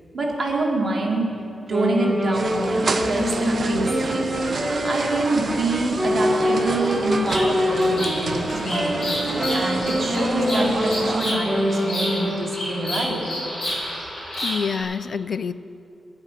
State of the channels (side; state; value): both; normal; correlation 0.86